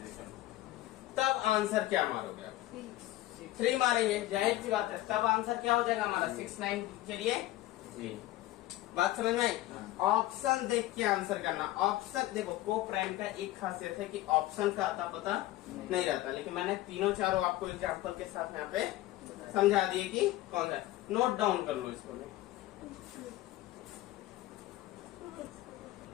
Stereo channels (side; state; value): right; quieter; 16.2 dB